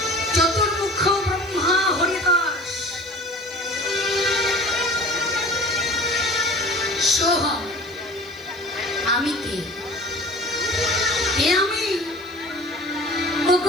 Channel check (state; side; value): noise; left; hiss, 29 dB below the sound